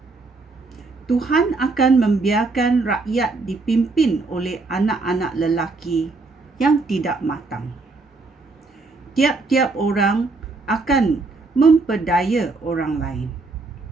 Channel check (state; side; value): quieter; left; 3.7 dB